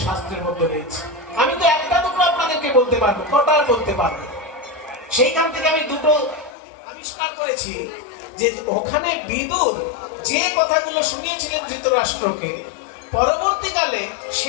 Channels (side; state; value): right; drops out; at 6.5 s